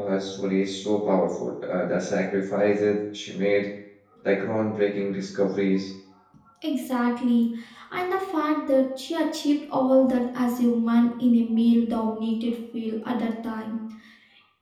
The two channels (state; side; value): identical; both; correlation 1.00